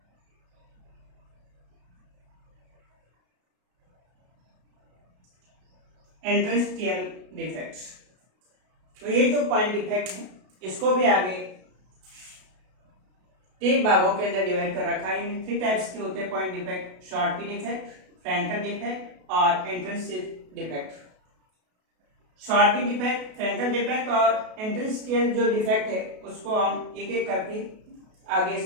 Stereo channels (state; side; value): late; left; 33 ms